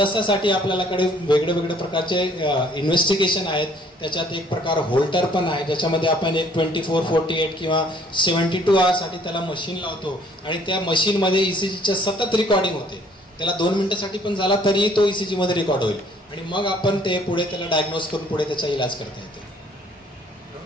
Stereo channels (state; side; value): normal; both; correlation 0.59